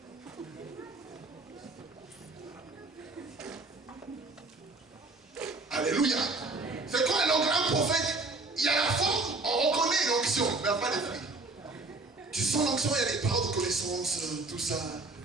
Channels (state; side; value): quieter; left; 3.4 dB